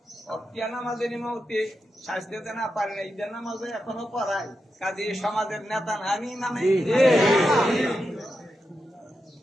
অক্তিয়া নামাজের ইমামতি স্বাস্থ্যতে না পারি না, ঈদের নামাজে এখনো পড়াই। কাজে সমাজের নেতা না আমি ইমামে।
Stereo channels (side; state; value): both; normal; correlation 0.88